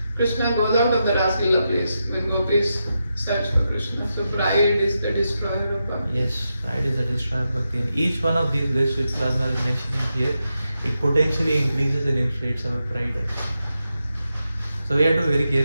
Krishna goes out of the Raslila place when gopis search for Krishna. So pride is the destroyer of bhakti. Yes, pride is the destroyer of bhakti. And each one of these lists which Plasma is mentioning here, it potentially increases and inflates our pride. So we have to be very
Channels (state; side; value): inverted; both; correlation -0.87